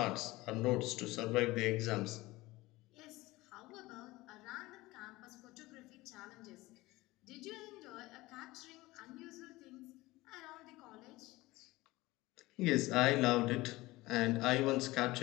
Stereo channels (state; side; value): quieter; right; 19.8 dB